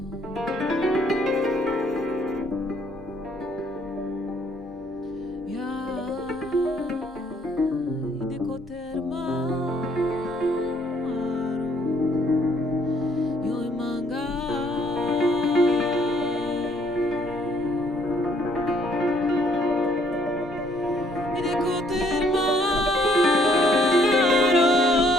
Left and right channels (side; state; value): both; normal; correlation 0.66